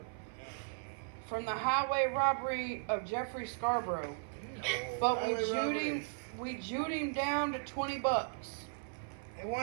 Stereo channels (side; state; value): left; silent; 53 dB below the other